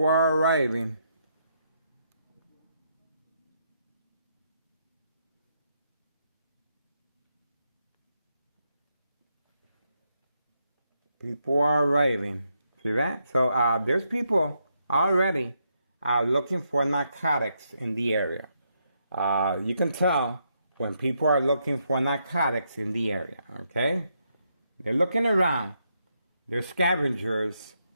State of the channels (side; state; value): both; inverted; correlation -0.79